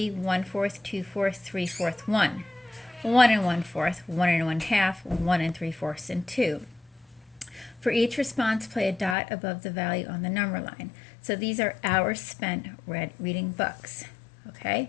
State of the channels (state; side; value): drops out; right; at 9.2 s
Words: 1/4, 2/4, 3/4, 1. 1 and 1/4, 1 and 1/2, 1 and 3/4, and 2. For each response, play a dot above the value on the number line. So these are hours spent reading books.